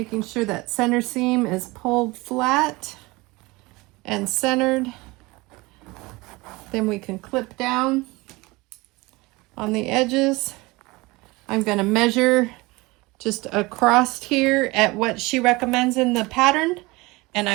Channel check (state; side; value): quieter; left; 22.8 dB